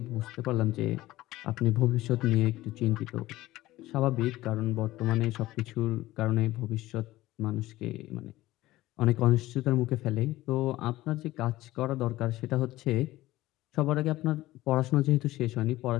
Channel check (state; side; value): quieter; right; 17.0 dB